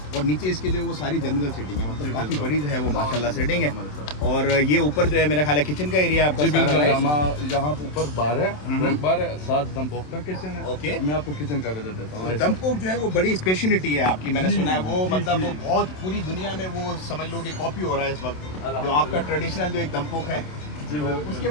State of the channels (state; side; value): late; right; 27 ms